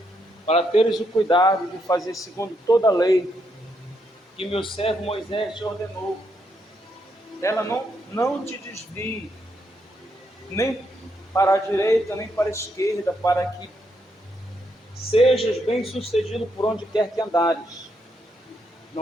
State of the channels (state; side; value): normal; both; correlation 0.78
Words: para teres o cuidado de fazer segundo toda a lei que meu servo Moisés te ordenou. Ela não te desvie, nem para a direita, nem para a esquerda, para que sejas bem-sucedido por onde quer que andares.